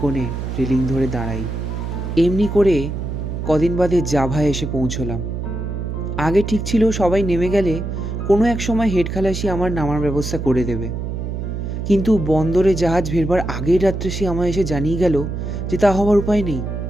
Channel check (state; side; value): noise; right; hum, 4 dB below the sound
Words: রেলিং ধরে দাঁড়াই। এমনি করে কদিন বাদে জাভায় এসে পৌঁছলাম। আগে ঠিক ছিল সবাই নেমে গেলে কোনো এক সময় হেড খালাসি আমার নামার ব্যবস্থা করে দেবে। কিন্তু বন্দরে জাহাজ ফেরবার আগের রাত্রে সে আমায় এসে জানিয়ে গেল যে তা হওয়ার উপায় নেই।